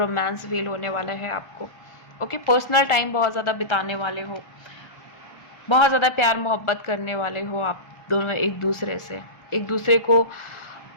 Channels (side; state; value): right; late; 1.4 ms